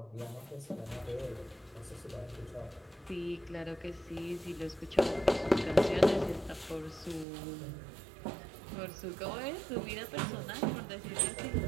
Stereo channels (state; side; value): drops out; left; at 7.2 s